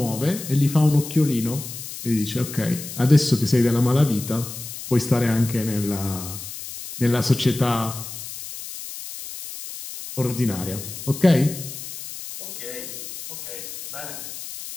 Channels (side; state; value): left; noise; hiss, 10 dB below the sound